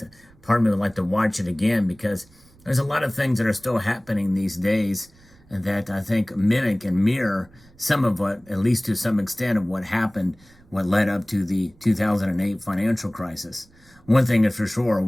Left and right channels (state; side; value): noise; right; rumble, 28 dB below the sound